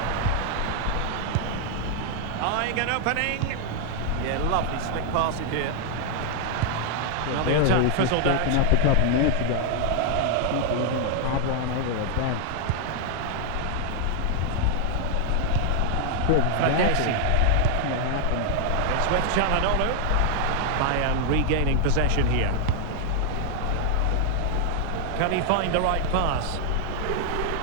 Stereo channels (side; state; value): both; different; correlation 0.00